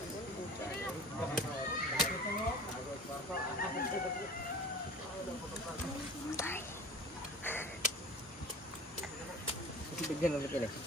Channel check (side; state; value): both; normal; correlation 0.40